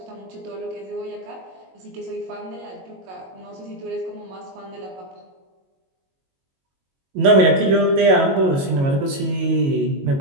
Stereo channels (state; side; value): late; left; 22 ms